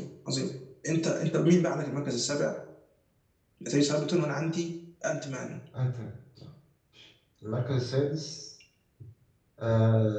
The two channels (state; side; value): identical; both; correlation 1.00